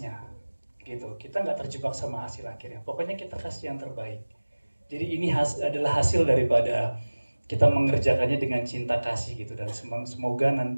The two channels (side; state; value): both; inverted; correlation -1.00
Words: gitu. Kita nggak terjebak sama hasil akhirnya. Pokoknya kita kasih yang terbaik. Jadi ini adalah hasil daripada kita mengerjakannya dengan cinta kasih gitu. Dan semoga